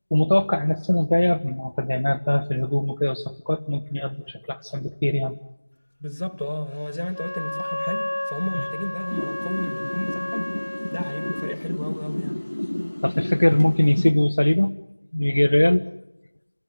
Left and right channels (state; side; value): inverted; both; correlation -1.00